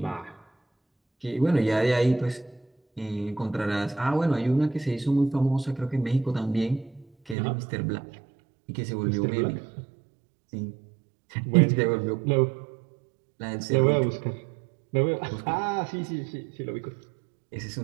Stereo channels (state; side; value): drops out; left; at 7.4 s